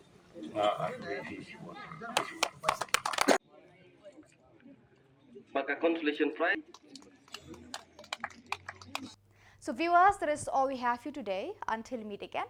maka consolation prize. So viewers, that is all we have for you today. Until we meet again,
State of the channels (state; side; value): identical; both; correlation 1.00